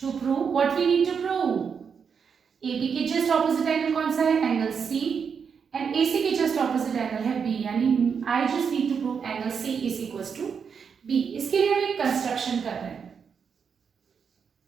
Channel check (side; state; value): left; quieter; 6.5 dB